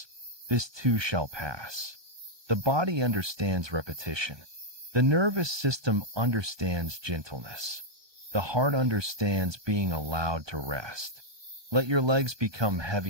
This too shall pass." The body understands repetition. The nervous system understands gentleness. The heart understands being allowed to rest. Let your legs become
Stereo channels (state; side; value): late; left; 1.2 ms